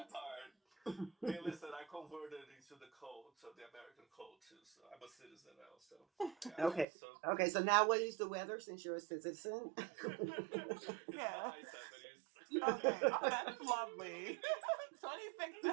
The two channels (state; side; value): drops out; left; at 6.9 s